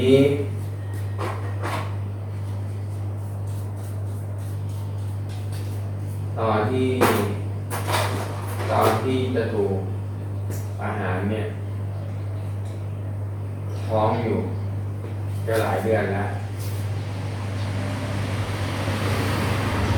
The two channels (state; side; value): identical; both; correlation 1.00